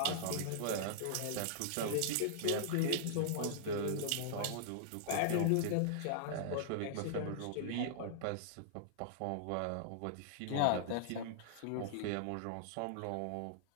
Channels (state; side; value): different; both; correlation -0.01